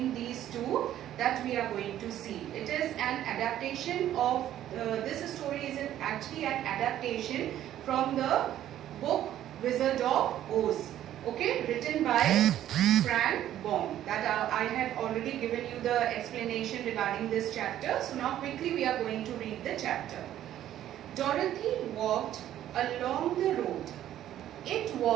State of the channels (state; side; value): quieter; left; 12.0 dB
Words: these two, that we are going to see. It is an adaptation of this story is actually an adaptation from the book Wizard of Oz. Okay, written by Frank Baum. That I have already given you the explanation regarding this chapter. So now quickly we are going to read the chapter. Dorothy walked along the road. It